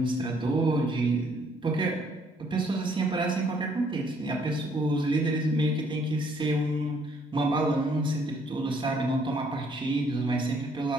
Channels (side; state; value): both; normal; correlation 0.66